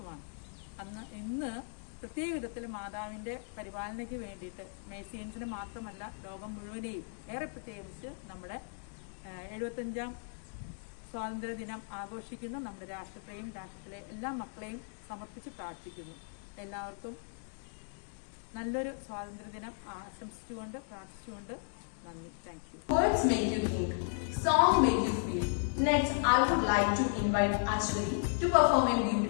ഇന്ന് പ്രത്യേക വിധത്തിൽ മാതാവിൻ്റെ പരിപാലനയ്ക്ക് വേണ്ടിയിട്ട് മേഴ്സിയൻസിന് മാത്രമല്ല ലോകം മുഴുവനെയും ഏറെ പ്രത്യേകിച്ച് നമ്മുടെ 75ാം സ്വാതന്ത്ര്യ ദിനം ആഘോഷിക്കുന്ന നമ്മുടെ രാഷ്ട്രത്തെയും രാഷ്ട്രത്തിലെ എല്ലാ മക്കളെയും സമർപ്പിച്ച് പ്രാർത്ഥിക്കുന്നു. എല്ലാവർക്കും നല്ലൊരു സ്വാതന്ത്ര്യ ദിനം ആശംസിച്ചുകൊണ്ട് പ്രാർത്ഥിച്ചുകൊണ്ട് നന്ദി. Thank you. Words make you think, song make you feel. Next, I would like to invite Ashwari to perform a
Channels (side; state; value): right; silent; digital silence